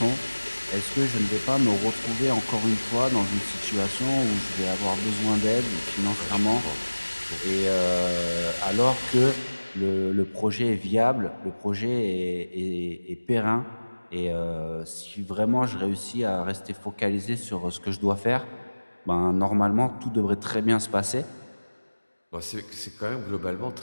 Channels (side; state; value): both; inverted; correlation -1.00